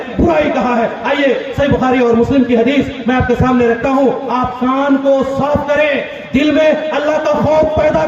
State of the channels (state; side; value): identical; both; correlation 1.00